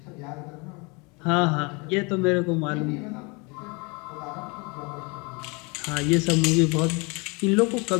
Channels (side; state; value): right; quieter; 29.2 dB